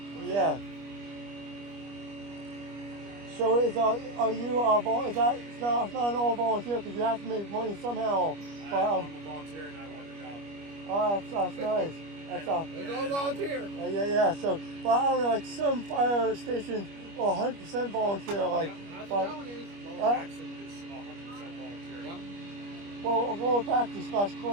Yeah. So is you is that it's not an all volunteer because you have to make money somehow. But I'm a volunteer and I want the job. Oh, that's nice. It's all volunteer. Yeah. So, but I don't know, like some fire stations are 100% volunteer. Like, That's but what that one is. Lower Paxton is 100% volunteer. Yep. well, Lower Paxton /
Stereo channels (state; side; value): late; left; 25 ms